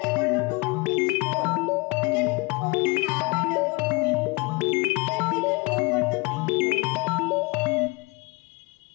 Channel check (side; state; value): right; quieter; 26.0 dB